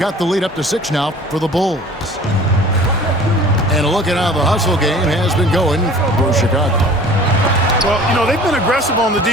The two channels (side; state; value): both; normal; correlation 0.46